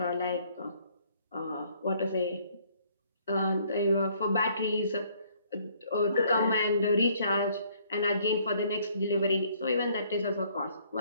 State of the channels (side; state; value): both; inverted; correlation -0.63